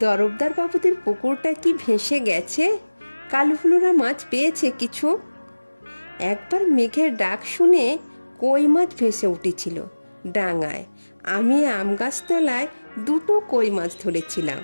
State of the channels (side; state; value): both; inverted; correlation -1.00